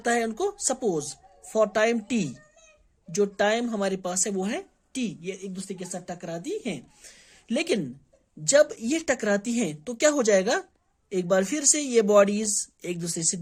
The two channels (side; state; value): both; identical; correlation 1.00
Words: है उनको। सपोज फॉर टाइम टी, जो टाइम हमारे पास है वो है टी, ये एक दूसरे के साथ टकराती हैं। लेकिन जब ये टकराती हैं तो क्या हो जाएगा, एक बार फिर से ये बॉडीज एक दूसरे से